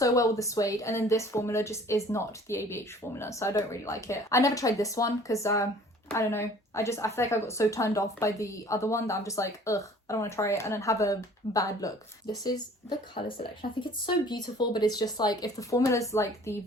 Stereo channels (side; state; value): both; normal; correlation 0.51